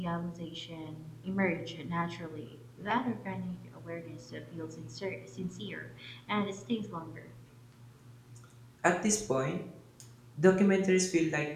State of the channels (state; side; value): identical; both; correlation 1.00